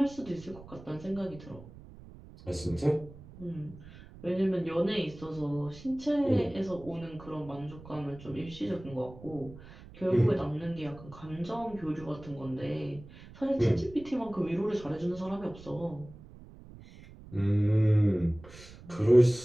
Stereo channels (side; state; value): right; noise; rumble, 18 dB below the sound